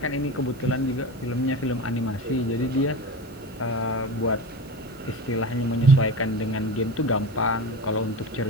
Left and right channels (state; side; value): normal; both; correlation 0.28